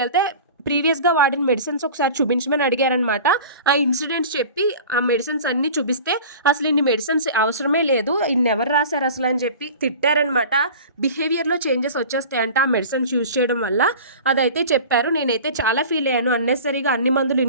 ప్రీవియస్‌గా వాడిన మెడిసిన్స్ ఒకసారి చూపించమని అడిగారనమాట. ఆ ఇన్సిడెంట్స్ చెప్పి ఆ మెడిసిన్స్ అన్నీ చూపిస్తే అసలు ఇన్ని మెడిసిన్స్ అవసరమే లేదు. ఇన్ని ఎవరు రాశారు అసలు అని చెప్పి తిట్టారనమాట. బిహేవియర్‌లో చేంజెస్ వచ్చేస్తాయంట ఆ మెడిసిన్స్ యూజ్ చేయడం వల్ల. అదైతే చెప్పారు. నేనైతే చాలా ఫీల్ అయ్యాను. అన్నెసెసరీగా అన్ని మందులు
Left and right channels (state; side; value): inverted; both; correlation -0.39